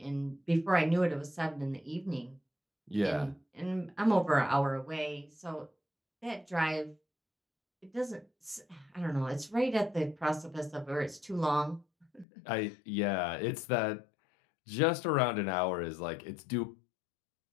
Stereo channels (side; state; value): right; drops out; at 12.2 s